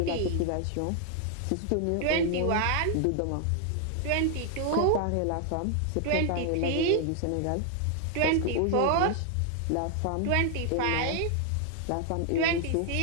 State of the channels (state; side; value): different; both; correlation 0.00